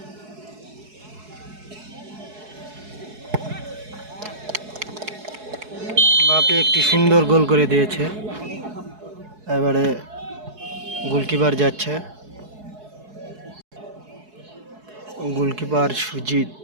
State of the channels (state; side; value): late; left; 4.7 ms